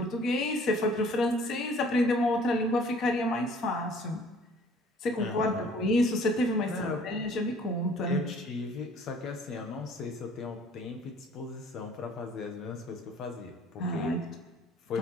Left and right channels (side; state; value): both; normal; correlation 0.54